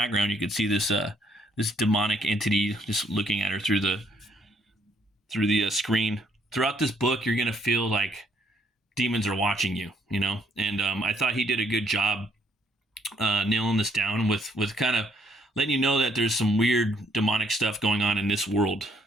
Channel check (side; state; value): both; normal; correlation 0.68